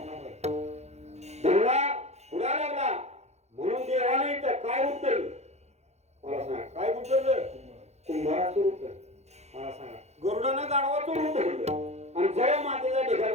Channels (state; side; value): late; left; 0.32 ms